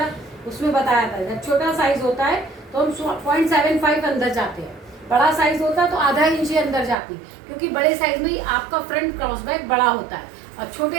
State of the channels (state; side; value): drops out; left; at 7.0 s